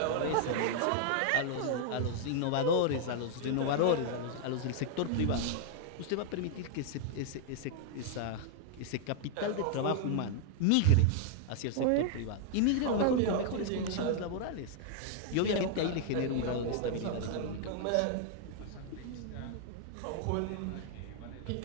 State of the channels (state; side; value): different; both; correlation -0.01